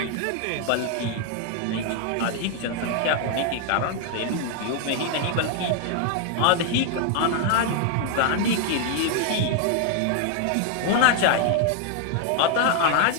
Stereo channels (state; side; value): different; both; correlation 0.00